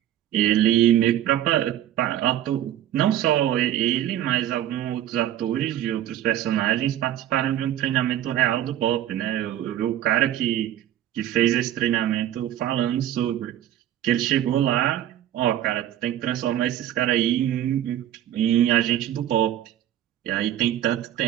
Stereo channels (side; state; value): left; quieter; 12.0 dB